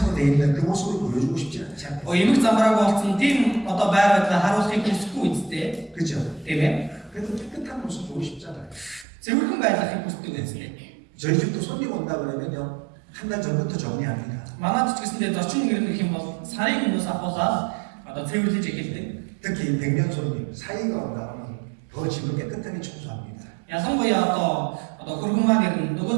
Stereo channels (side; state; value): left; drops out; at 9.1 s